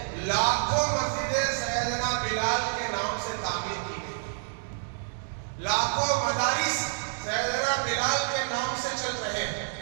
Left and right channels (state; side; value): silent; left; digital silence